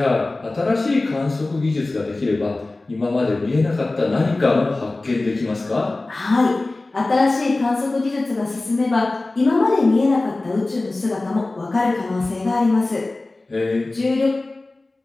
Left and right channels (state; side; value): quieter; right; 3.1 dB